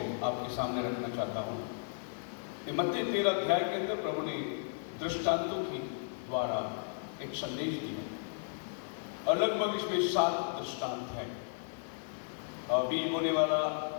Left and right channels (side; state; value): right; silent; digital silence